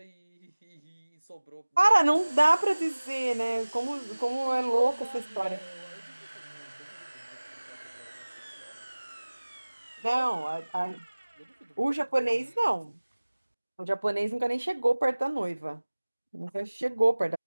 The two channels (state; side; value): inverted; both; correlation -1.00